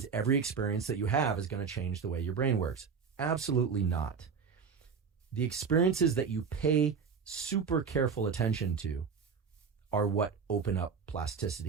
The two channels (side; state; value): left; quieter; 6.0 dB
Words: every experience that you have is going to change the way your brain works. Absolutely not. The experiences that you pay super careful attention to are what open up